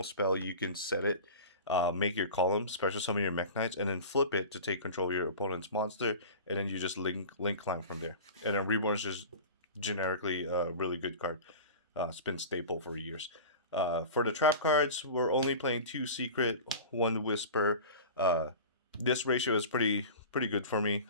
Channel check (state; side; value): inverted; both; correlation -0.35